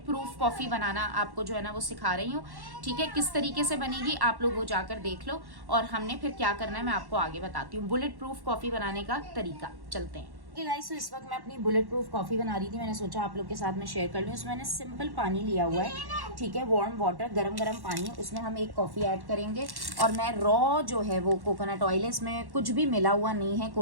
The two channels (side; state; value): left; late; 1.1 ms